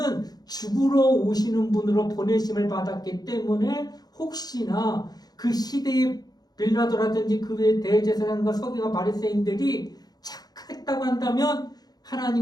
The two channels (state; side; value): late; right; 0.19 ms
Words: 죽으러 오시는 분으로 보내심을 받았기 때문에 혹시나 그 시대의 빌라도라든지 그 외의 대제사장과 서기관 바리새인들이 착했다고 한다면